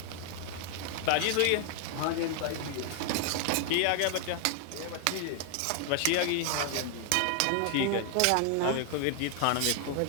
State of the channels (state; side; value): different; both; correlation 0.00